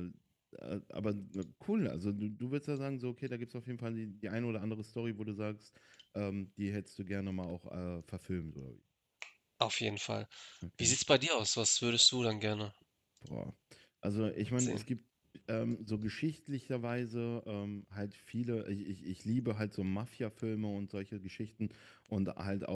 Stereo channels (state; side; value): identical; both; correlation 1.00